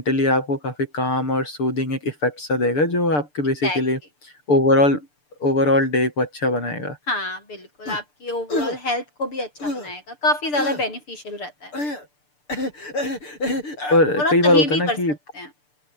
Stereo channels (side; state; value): right; late; 6.8 ms